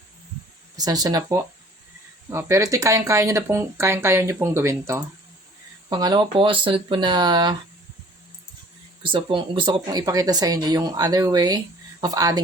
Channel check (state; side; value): normal; both; correlation 0.52